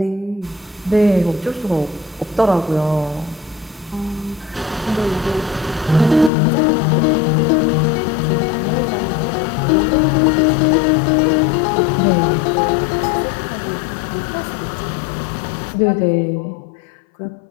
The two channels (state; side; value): drops out; right; at 6.3 s